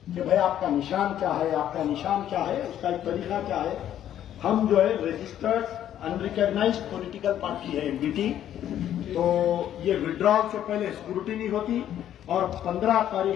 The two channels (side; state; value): right; quieter; 11.0 dB